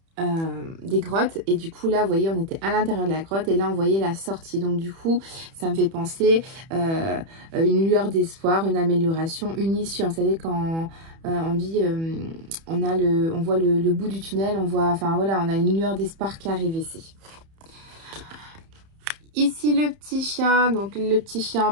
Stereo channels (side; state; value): left; late; 31 ms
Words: des grottes et du coup là vous voyez on était à l'intérieur de la grotte et là on voyait la sortie, donc du coup ça me fait penser une lueur d'espoir, une amélioration, une issue. Vous savez quand on dit on voit le bout du tunnel, on voit, enfin voilà, on a une lueur d'espoir qui arrive ici. Ici le petit chien, donc le petit chien